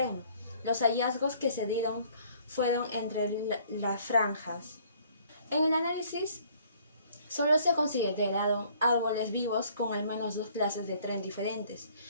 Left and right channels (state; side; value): inverted; both; correlation -0.58